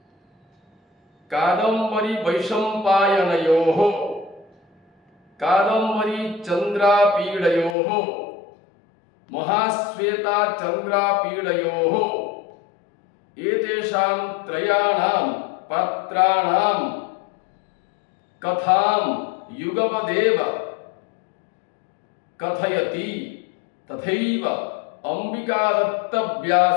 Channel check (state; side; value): drops out; right; at 7.8 s